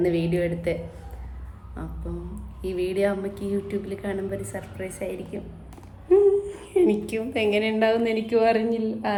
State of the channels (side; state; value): both; identical; correlation 1.00